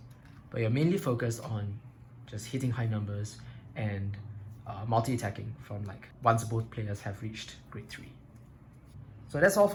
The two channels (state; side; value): identical; both; correlation 1.00